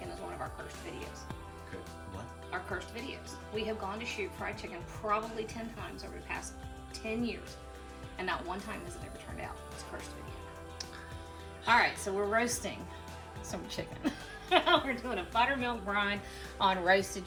is one of our cursed videos. What? Our cursed videos. We have gone to shoot fried chicken probably 10 times over the past 10 years, and not one time has it ever turned out. It's a cursed video. All right, so we're roasting some chicken. We're doing a buttermilk brine on roasted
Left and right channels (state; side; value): identical; both; correlation 1.00